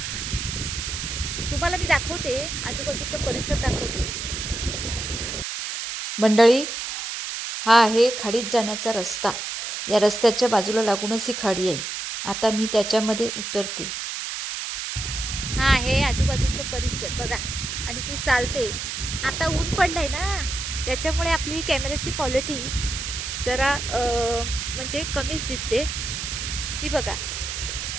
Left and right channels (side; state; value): right; noise; hiss, 5 dB below the sound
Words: तुम्हाला मी दाखवते, आजूबाजूचा परिसर दाखवते. मंडळी, हा आहे खाडीत जाण्याचा रस्ता. या रस्त्याच्या बाजूला लागूनच ही खाडी आहे. आता मी त्याच्यामध्ये उतरते. हा आहे आजूबाजूचा परिसर बघा, आणि ती चालते. आता ऊन पडलंय ना, त्याच्यामुळे आपली कॅमेऱ्याची क्वालिटी जरा म्हणजे कमीच दिसते. ती बघा,